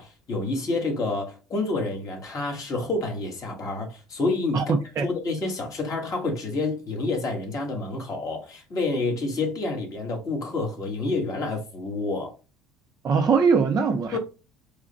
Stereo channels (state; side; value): normal; both; correlation 0.55